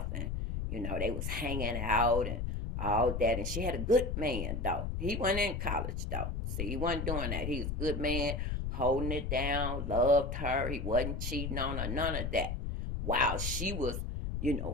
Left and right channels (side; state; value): left; noise; rumble, 2 dB below the sound